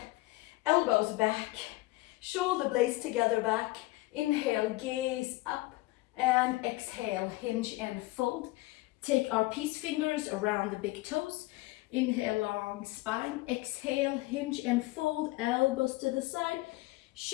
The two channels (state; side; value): quieter; right; 20.3 dB